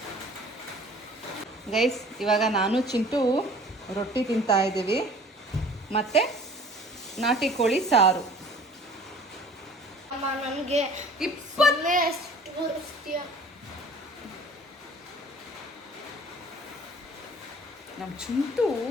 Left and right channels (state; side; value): normal; both; correlation 0.49